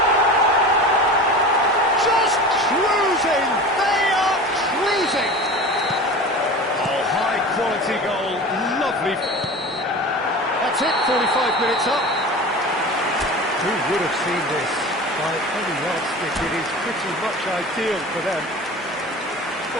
They are cruising! Oh, high-quality goal, lovely. That's it, 45 minutes up. Who would have seen this? By any yardstick, it is pretty much ideal for them.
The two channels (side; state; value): both; normal; correlation 0.34